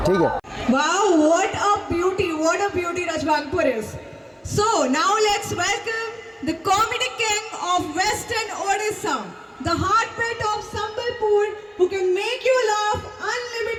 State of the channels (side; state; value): both; identical; correlation 1.00